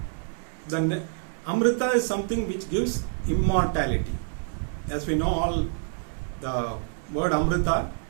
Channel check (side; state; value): left; silent; 60 dB below the other